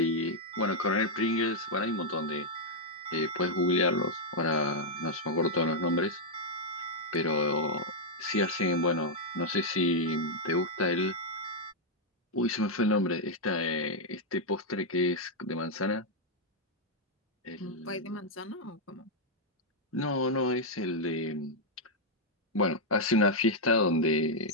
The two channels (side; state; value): both; normal; correlation -0.03